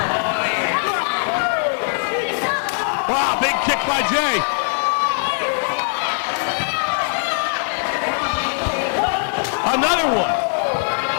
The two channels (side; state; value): right; silent; 65 dB below the other